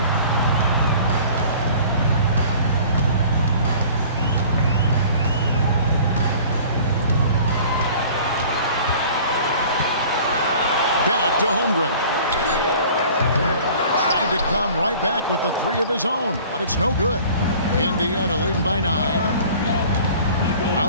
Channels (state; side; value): inverted; both; correlation -0.47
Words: Back to Holmgren. Trying to come right back with the 3 of his own, but it's no good. Indiana leading by 9.